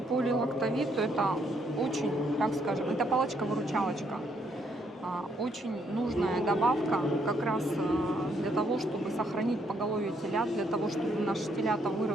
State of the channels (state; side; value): normal; both; correlation 0.72